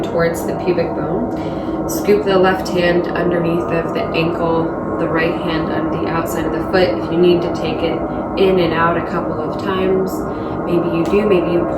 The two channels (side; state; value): both; identical; correlation 1.00